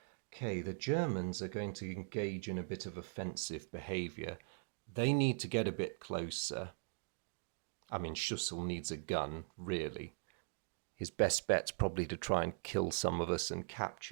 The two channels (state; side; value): silent; left; digital silence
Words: Okay, the Germans are going to engage in a bit of offensive behaviour. They need to get a bit closer. I mean, Schussel needs a gun, really. His best bet's probably to try and kill some of us and